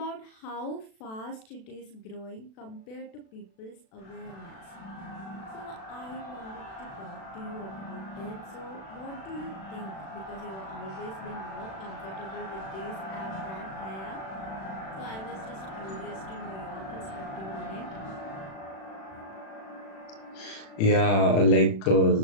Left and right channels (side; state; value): right; late; 36 ms